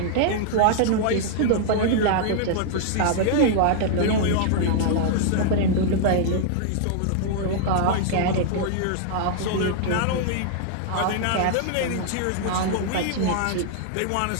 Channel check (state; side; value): different; both; correlation -0.01